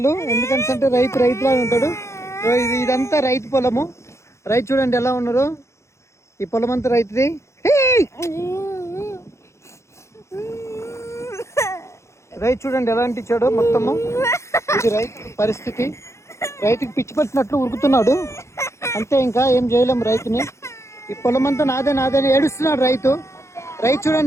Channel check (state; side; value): late; right; 0.14 ms